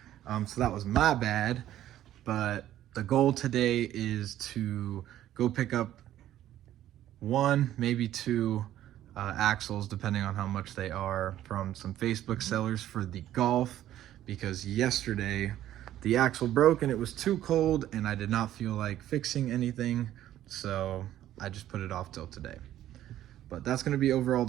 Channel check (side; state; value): left; quieter; 12.7 dB